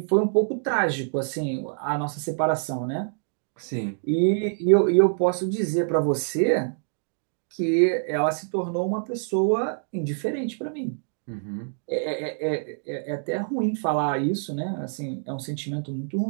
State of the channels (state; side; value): silent; left; digital silence